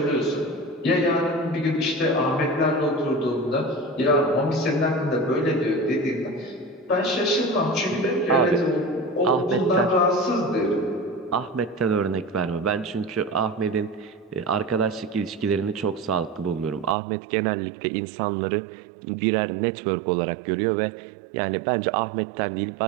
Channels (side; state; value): left; drops out; at 16.9 s